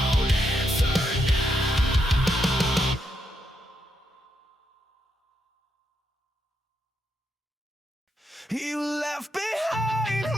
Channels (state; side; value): normal; both; correlation 0.80